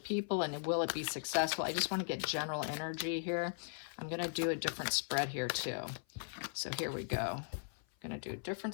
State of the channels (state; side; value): silent; right; 52 dB below the other